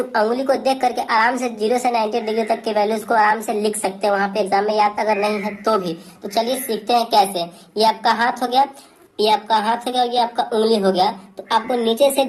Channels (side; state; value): both; identical; correlation 1.00